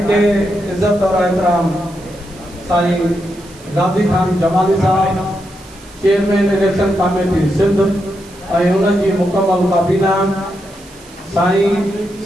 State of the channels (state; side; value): noise; right; hiss, 23 dB below the sound